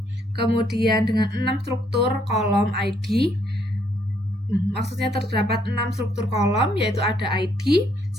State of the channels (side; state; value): both; normal; correlation 0.70